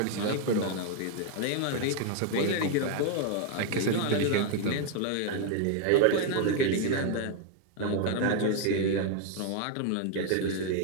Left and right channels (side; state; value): both; different; correlation 0.00